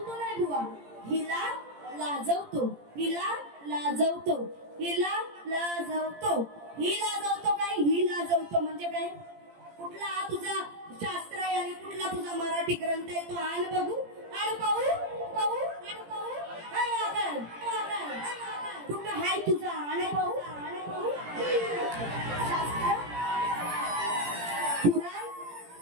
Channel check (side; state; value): left; late; 17 ms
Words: नाही बुवा, हिला लाजवतो, हिला लाजवतो, हिला लाजवतो, ही लाजवतो. काय ही लाजवतो म्हणजे काय? कुठला हा तुझा शास्त्र आहे आणि कुठला तुझा मराठी ग्रंथ आहे, तो आण बघू, आण पाहू, कुठं हाय तुझा, आण पाहू. शास्त्र पुराण